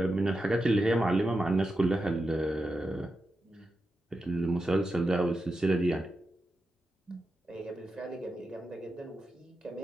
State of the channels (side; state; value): both; normal; correlation 0.89